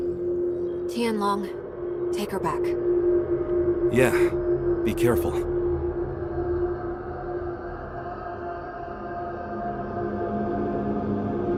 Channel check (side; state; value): both; identical; correlation 1.00